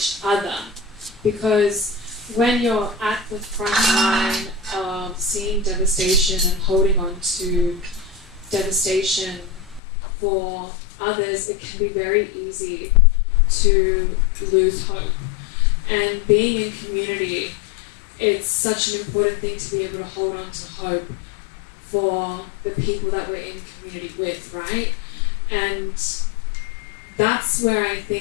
other. Because when you're at the front line of seeing devastation and holding on to devastation for others, it can be very easy to lose hope. And being in community, it's such an important thing to be able to hold on to hope for the people that we're in community with, right? And that's where I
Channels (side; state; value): right; drops out; at 9.8 s